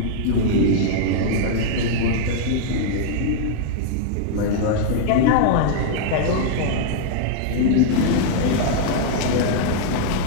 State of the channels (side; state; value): both; different; correlation -0.01